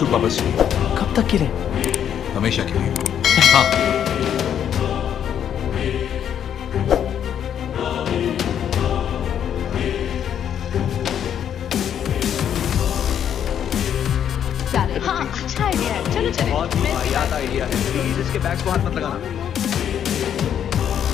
वापस चाहिए। कब तक के लिए? हमेशा के लिए। हाँ। हाँ, अच्छा आइडिया है, चलो चले। बहुत वाहियात आइडिया है, प्लीज इसके बैग्स को हाथ मत लगाना।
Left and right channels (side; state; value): right; quieter; 9.2 dB